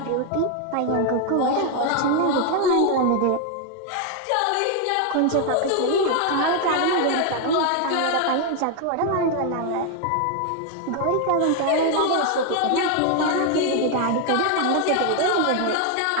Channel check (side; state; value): both; different; correlation 0.01